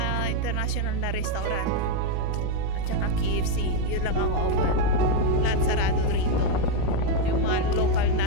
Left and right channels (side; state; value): both; different; correlation 0.02